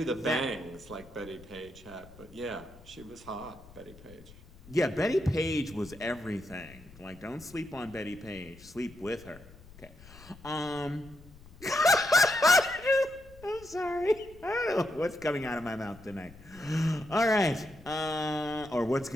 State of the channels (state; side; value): noise; left; rumble, 21 dB below the sound